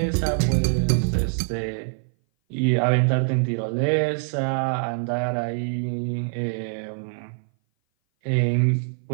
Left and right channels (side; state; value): left; silent; 58 dB below the other